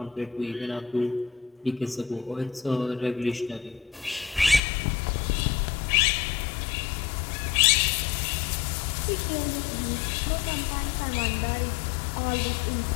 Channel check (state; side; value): drops out; right; at 4.6 s